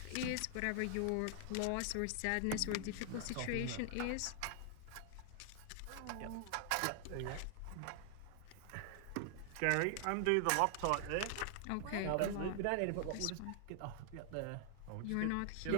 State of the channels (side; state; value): both; different; correlation 0.00